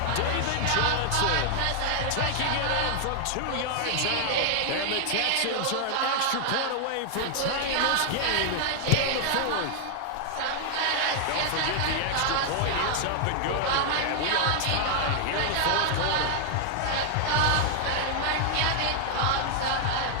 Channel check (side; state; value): both; different; correlation 0.00